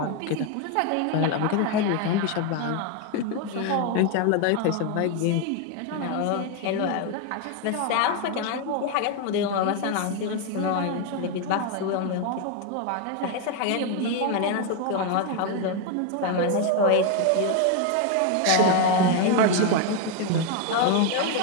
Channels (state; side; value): different; both; correlation 0.01